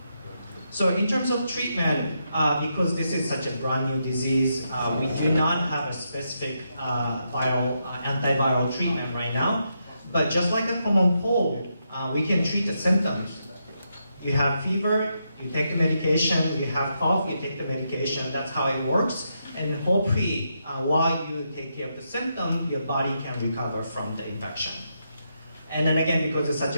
So in terms of treatment, because this is such a brand new disease, we do not have a specific antiviral treatment right now. But just like a common cold, we can treat the symptoms. You have fever, you take the medication. You have cough, you take the medication. That's how it works. And hopefully, while you take care of the symptom, your body can recover from the infection. And then again, because it's such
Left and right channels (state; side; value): inverted; both; correlation -0.82